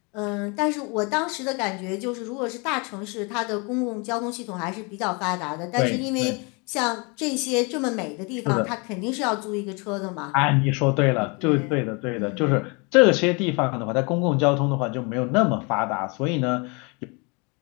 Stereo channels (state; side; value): quieter; right; 30.8 dB